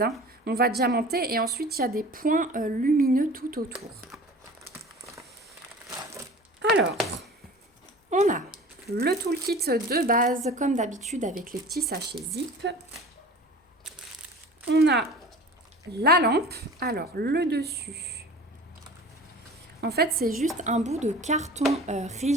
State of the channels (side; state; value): both; normal; correlation 0.40